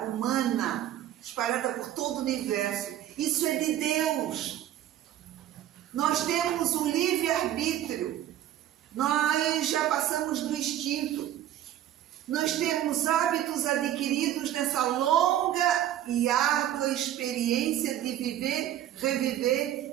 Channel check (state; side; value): quieter; left; 12.1 dB